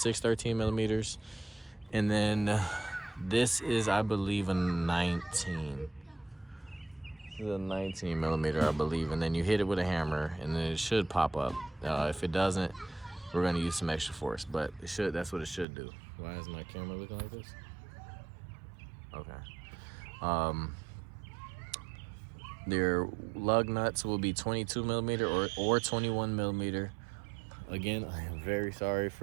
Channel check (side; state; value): left; drops out; at 15.7 s